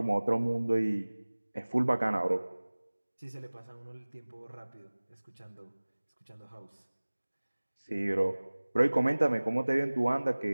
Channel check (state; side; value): inverted; both; correlation -1.00